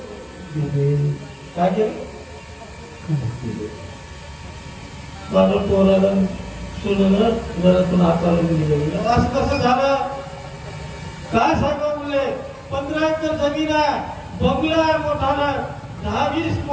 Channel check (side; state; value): both; identical; correlation 1.00